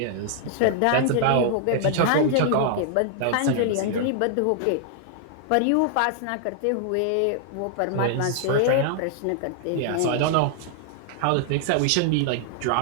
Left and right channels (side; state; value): both; different; correlation -0.01